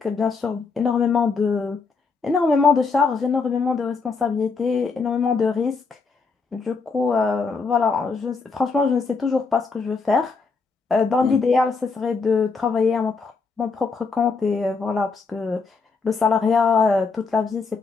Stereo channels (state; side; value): quieter; right; 4.6 dB